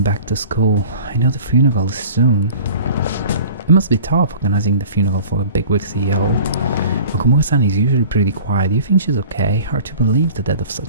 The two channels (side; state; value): both; inverted; correlation -0.44